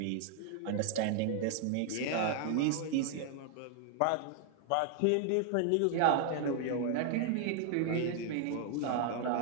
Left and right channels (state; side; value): different; both; correlation 0.00